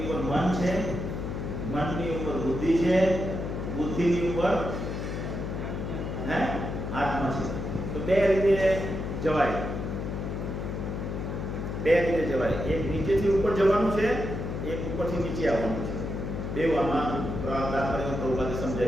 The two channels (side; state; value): left; noise; hum, 4 dB below the sound